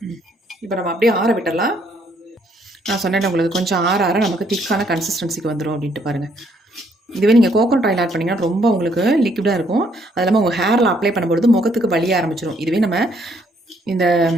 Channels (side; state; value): both; normal; correlation 0.68